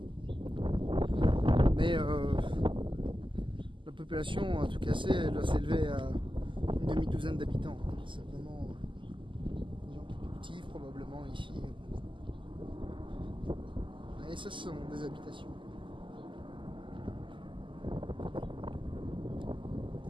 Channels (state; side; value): late; left; 0.24 ms